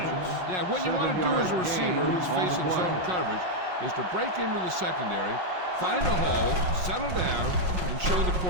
Yeah, what you want to do as a receiver who's facing zone coverage is to break into the secondary, find a hole, settle down, and show the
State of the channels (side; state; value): left; late; 5.5 ms